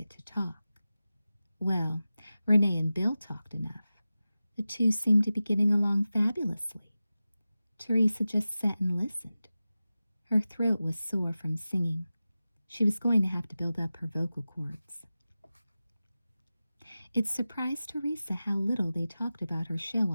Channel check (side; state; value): both; inverted; correlation -0.95